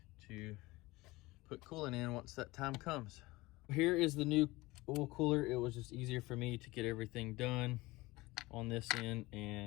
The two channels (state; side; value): quieter; right; 20.9 dB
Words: to put coolant in once that time comes. Here is the new oil cooler. It was just easier for me to get everything done on this end